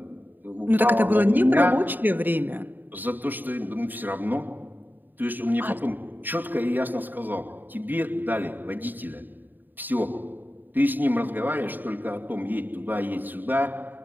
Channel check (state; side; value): late; left; 0.090 ms